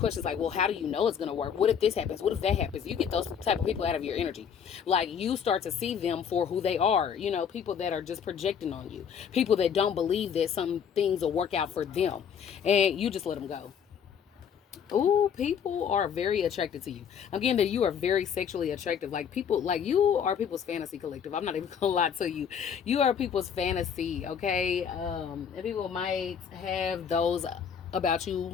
like, well, how do you know it's gonna work? What if this happens? What if that happens? You get those type of people out of your energy. Like you start to see them for who they are. People that are just projecting on you. People that don't believe that some things will work out for them, and you just let them go. Oh, people are very attracted to you. Again, that you are very sexually attractive. Like people, like you are people's fantasy collective. I'm not even gonna lie to you. You are people's fantasy, okay? And people might have those about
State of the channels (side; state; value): right; quieter; 7.6 dB